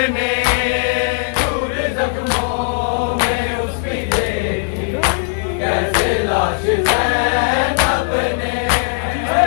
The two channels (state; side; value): silent; right; digital silence